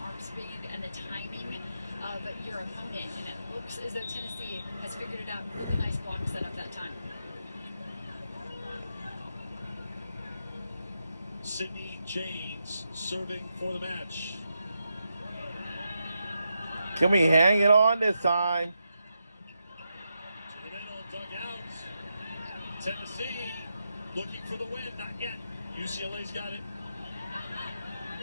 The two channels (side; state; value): both; inverted; correlation -0.85